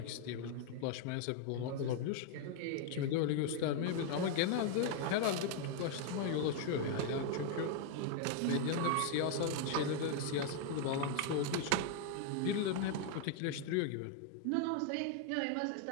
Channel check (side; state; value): both; different; correlation 0.00